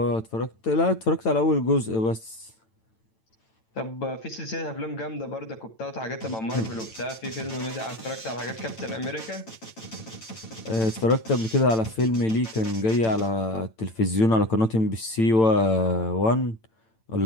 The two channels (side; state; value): right; late; 9.0 ms